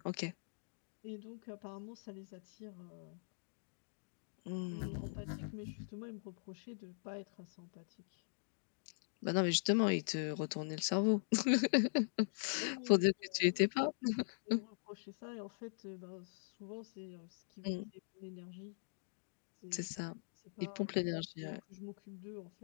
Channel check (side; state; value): right; silent; digital silence